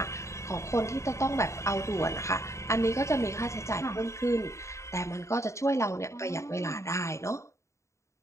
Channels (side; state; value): right; late; 0.14 ms